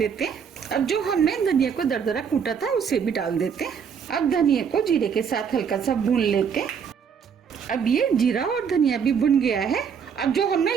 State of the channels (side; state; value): left; quieter; 6.9 dB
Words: हैं। अब जो हमने धनिया को दरदरा कूटा था उसे भी डाल देते हैं। अब धनिया को जीरे के साथ हल्का सा भून लेते हैं। अब ये जीरा और धनिया भी भुन गया है। अब जो हमने